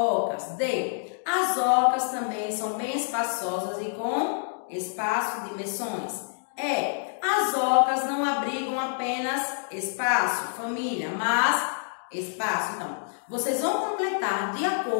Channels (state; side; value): silent; right; digital silence